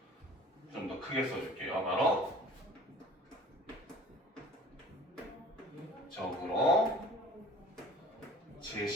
좀 더 크게 써줄게요. 바로 적으로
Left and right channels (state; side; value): normal; both; correlation 0.47